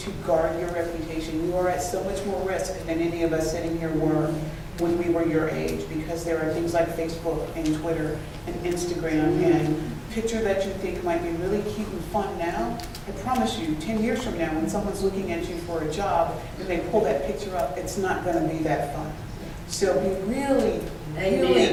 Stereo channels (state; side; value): identical; both; correlation 1.00